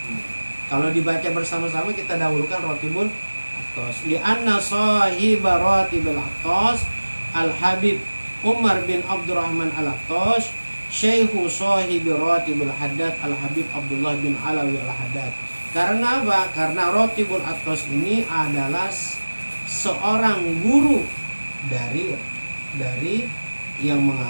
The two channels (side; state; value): both; inverted; correlation -1.00